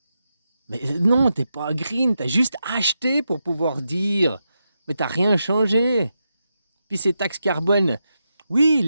Mais non, t'es pas green, t'as juste acheté pour pouvoir dire. Mais t'as rien changé. Puis ces taxes carbone, oui, ils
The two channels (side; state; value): both; inverted; correlation -0.86